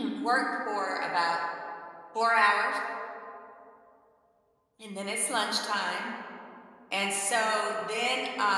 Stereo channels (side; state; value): both; identical; correlation 1.00